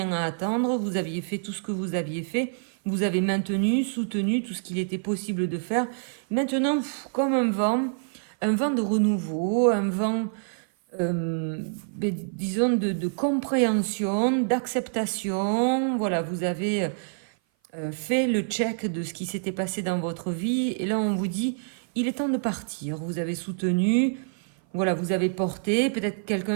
à attendre. Vous aviez fait tout ce que vous aviez fait. Vous avez maintenu, soutenu tout ce qu'il était possible de faire. Maintenant, comme un vent de renouveau, un vent, disons, de compréhension, d'acceptation. Voilà, vous avez fait le check de ce qui s'était passé dans votre vie. Et là, on vous dit, il est temps de partir. Vous avez soutenu, voilà, vous avez porté. Peut-être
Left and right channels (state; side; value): silent; left; 56 dB below the other